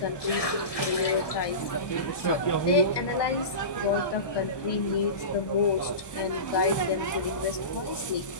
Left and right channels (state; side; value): late; right; 1.2 ms